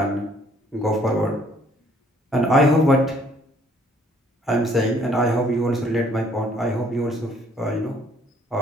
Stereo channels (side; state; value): both; normal; correlation 0.62